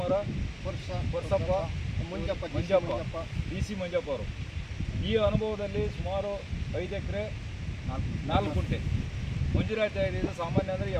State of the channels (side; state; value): both; identical; correlation 1.00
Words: ವರ್ಷಪ್ಪ ಮಂಜಪ್ಪ DC ಮಂಜಪ್ಪ ಅವರು ಈ ಅನುಭವದಲ್ಲಿ ಸುಮಾರು 5 ಎಕರೆ 4 ಗುಂಟೆ ಮಂಜೂರಾತಿ ಆಗಿದೆ. ಇದು ಸಾಮಾನ್ಯ ಅಂದರೆ